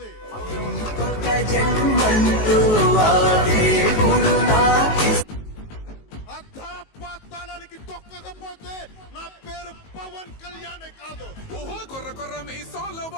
జన్మంతో వాడే గురు నాకి పాతాళానికి తొక్కకపోతే నా పేరు పవన్ కళ్యాణే కాదు. ఓహో కొర్ర కొర్ర మీసాల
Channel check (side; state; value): right; late; 19 ms